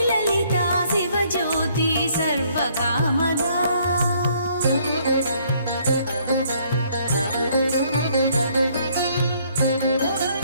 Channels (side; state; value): both; inverted; correlation -0.65